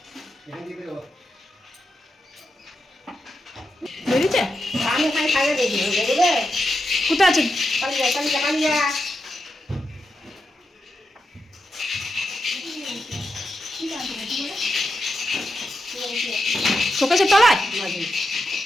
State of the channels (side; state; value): both; normal; correlation 0.87